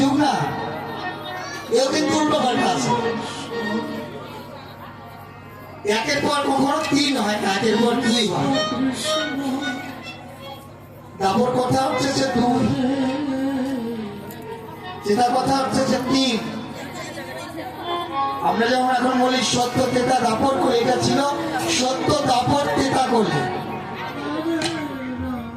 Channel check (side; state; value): both; identical; correlation 1.00